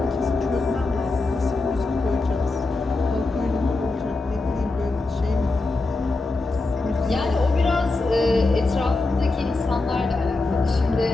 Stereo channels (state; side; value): quieter; right; 3.3 dB